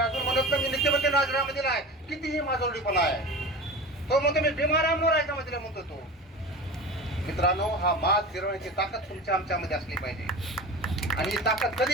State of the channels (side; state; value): both; normal; correlation 0.32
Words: म्हणत नाही मी नीतिमत्तेनं राजीनामा दिला आहे. कितीही माझोडीपणा आहे. तो म्हणतो मी बिमारांवर राजीनामा दिला म्हणतो तो. मित्रांनो, हा माज फिरवण्याची ताकद तुमच्या आमच्यामध्ये असली पाहिजे. आणि ही ताकद